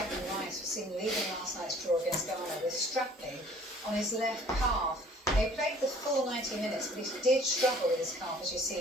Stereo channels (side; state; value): both; normal; correlation 0.54